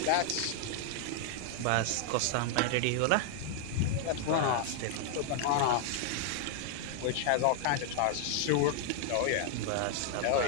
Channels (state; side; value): different; both; correlation 0.00